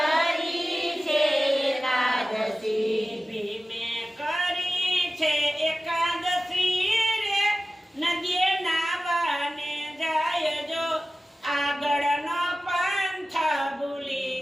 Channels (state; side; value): normal; both; correlation 0.96